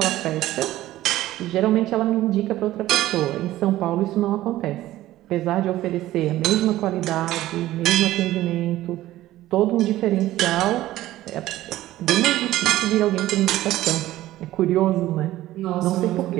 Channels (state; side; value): quieter; left; 15.2 dB